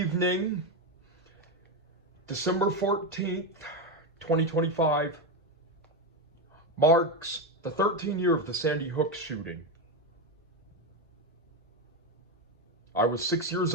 December 14th, 2025, marks the 13th year of the Sandy Hook shooting. I was 6 years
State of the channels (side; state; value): both; normal; correlation 0.11